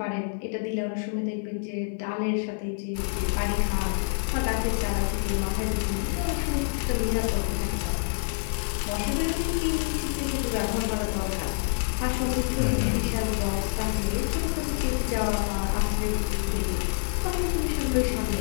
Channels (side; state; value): right; silent; 55 dB below the other